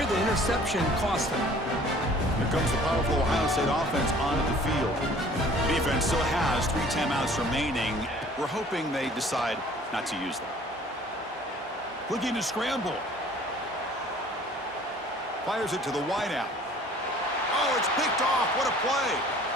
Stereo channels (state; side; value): normal; both; correlation 0.52